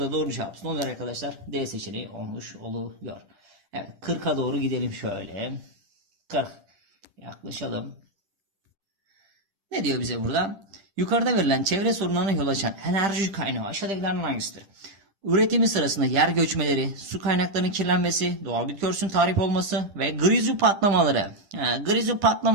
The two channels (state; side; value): late; left; 10 ms